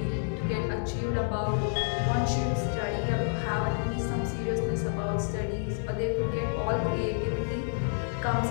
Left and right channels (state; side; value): silent; right; digital silence